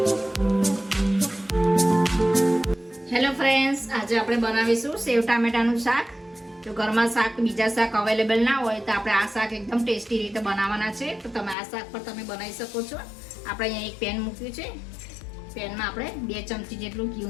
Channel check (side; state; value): right; drops out; at 11.6 s